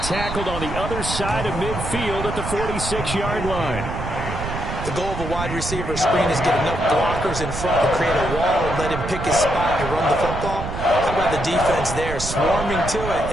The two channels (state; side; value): noise; right; rumble, 6 dB below the sound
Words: tackled on the other side of midfield at the 46-yard line. The goal of a wide receiver screen is get enough blockers in front to create a wall and let him pick his spot to run the football. How about the defense there, swarming to it